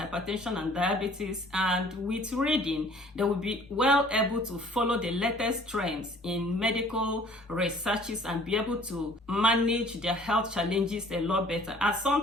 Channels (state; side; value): normal; both; correlation 0.53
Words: and diabetes, and with reading, they will be well able to follow the latest trends in medical researches and be able to manage their health challenges a lot better. As